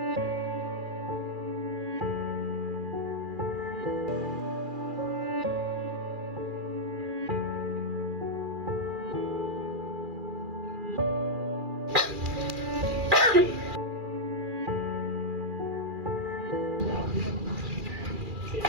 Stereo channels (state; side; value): late; left; 2.4 ms